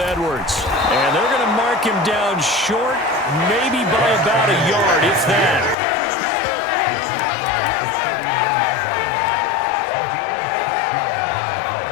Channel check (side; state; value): right; drops out; at 5.8 s